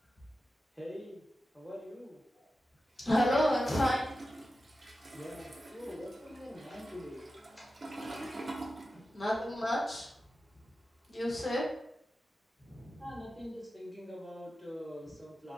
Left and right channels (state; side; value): normal; both; correlation 0.92